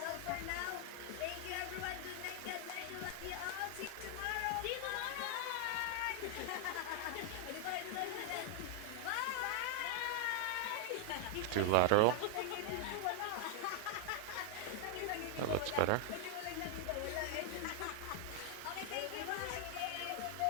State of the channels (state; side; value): different; both; correlation 0.00